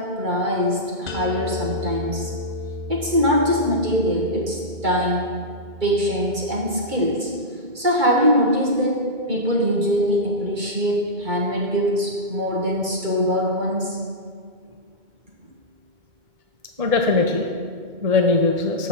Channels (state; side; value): late; left; 2.3 ms